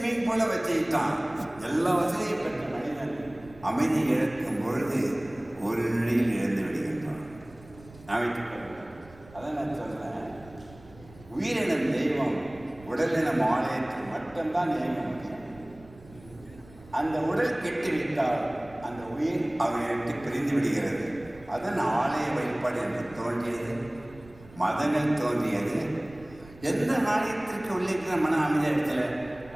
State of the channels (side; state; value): right; noise; rumble, 22 dB below the sound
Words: பூலை வச்சுக்கிட்டான். எல்லா வசதியும் பெற்ற மனிதன் அமைதி இழக்கும் பொழுது ஒரு நிலையில் இழந்து விடுகின்றான். அதான் நான் சொல்றேன், உயிரினம் தெய்வம், உடலினம் ஆலயத்தில் மட்டும்தான் இயங்க முடியும். அந்த உடல் கெட்டுவிட்டால் அந்த உயிர் அவனை விட்டு பிரிந்து விடுகிறது. அதன் ஆலய வழிபாடு என்று தோன்றியது, மதங்கள் தோன்றியது. எந்த ஆலயத்திற்கு உள்ளிருக்கிற மன அமைதி இடத்துல